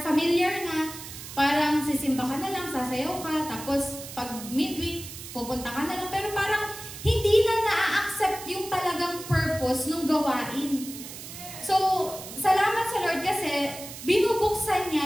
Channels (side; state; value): right; noise; hiss, 12 dB below the sound